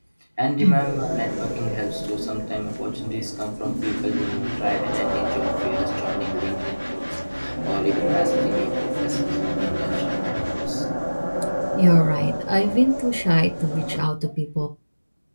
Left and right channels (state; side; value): inverted; both; correlation -1.00